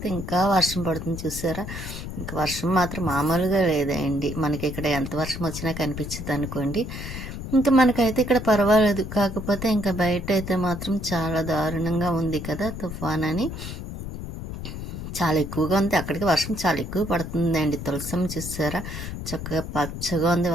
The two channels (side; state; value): left; noise; rumble, 8 dB below the sound